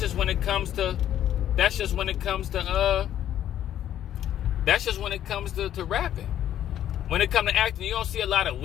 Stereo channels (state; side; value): quieter; right; 11.1 dB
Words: just when it comes to rapping. When it comes to acting, you don't see a lot of